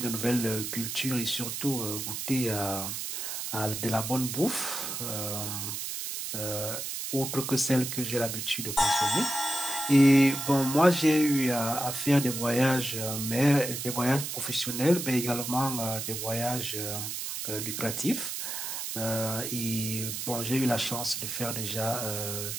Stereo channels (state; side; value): noise; right; hiss, 5 dB below the sound